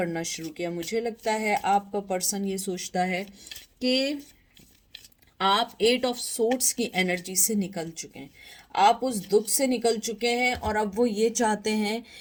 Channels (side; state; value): both; identical; correlation 1.00